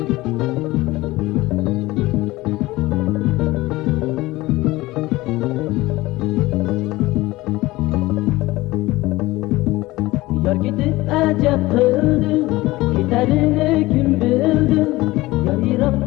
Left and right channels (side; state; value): right; quieter; 19.2 dB